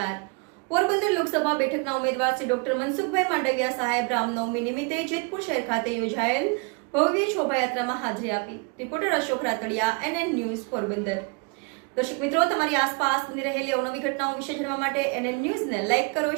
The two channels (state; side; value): quieter; left; 33.5 dB